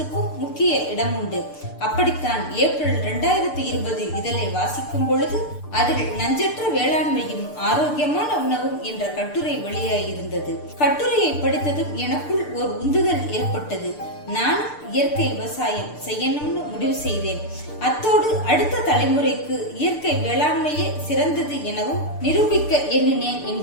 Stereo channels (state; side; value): late; right; 6.7 ms